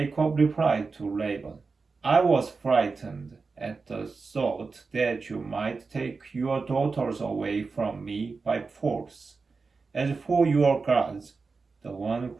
replied to Laban, I was frightened at the thought that you might take your daughters away from me by force. As for your gods, the one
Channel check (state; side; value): quieter; left; 4.4 dB